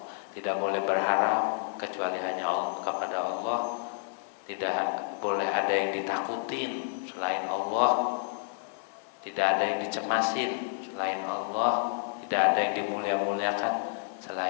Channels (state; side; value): silent; right; digital silence